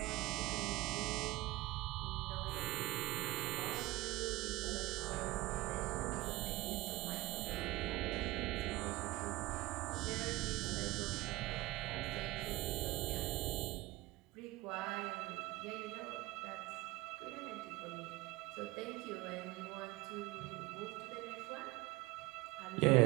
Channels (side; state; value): left; quieter; 19.0 dB